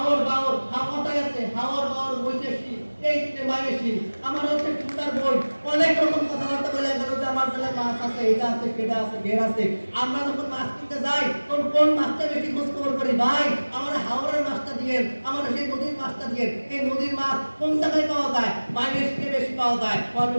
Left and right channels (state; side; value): inverted; both; correlation -1.00